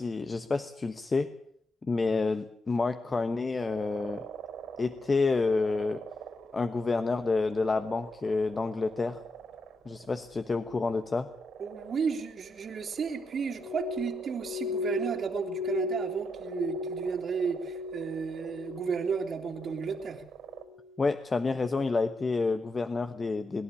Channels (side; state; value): both; normal; correlation 0.83